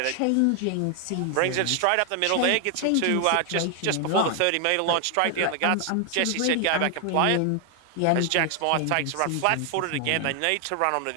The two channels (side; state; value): both; different; correlation 0.00